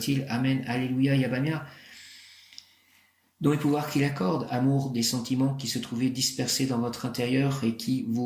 Amen, Alléluia, Yabamia. Dont les pouvoirs qu'il accorde, amour des sentiments qui se trouvaient dispersés dans votre intérieur et qui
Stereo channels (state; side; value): identical; both; correlation 1.00